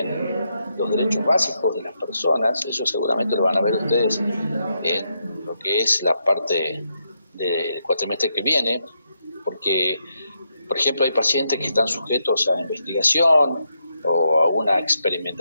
los derechos básicos de las personas. Eso seguramente lo van a ver ustedes en lo que es la parte del cuatrimestre que viene, porque, por ejemplo, hay pacientes que están sujetos a investigación o a una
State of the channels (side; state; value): both; inverted; correlation -0.81